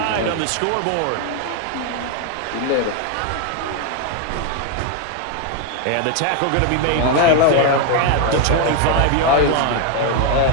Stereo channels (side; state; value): both; different; correlation 0.01